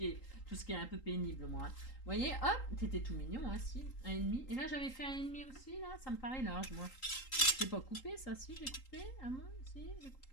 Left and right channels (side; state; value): right; late; 3.8 ms